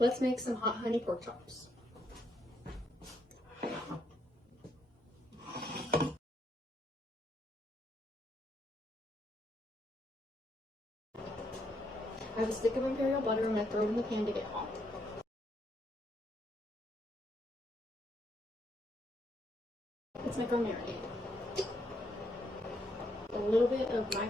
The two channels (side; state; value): both; normal; correlation 0.75